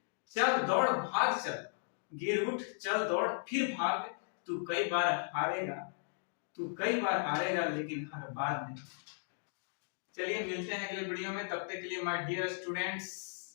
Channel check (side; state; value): right; silent; digital silence